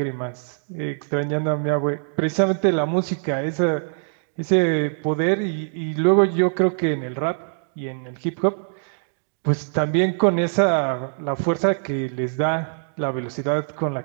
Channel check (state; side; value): silent; left; digital silence